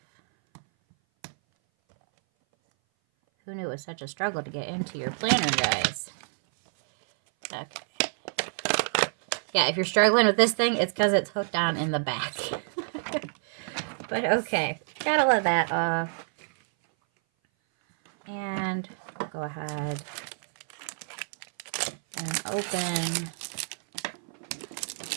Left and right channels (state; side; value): silent; left; 57 dB below the other